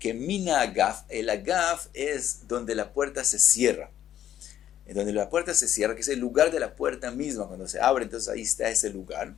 Mina agaf, el agaf es donde la puerta se cierra. Donde la puerta se cierra, que es el lugar de la puerta misma, cuando se abre, entonces ahí está ese lugar.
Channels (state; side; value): quieter; right; 11.2 dB